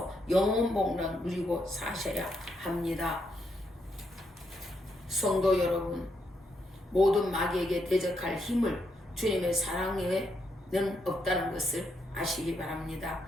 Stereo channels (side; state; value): both; normal; correlation 0.79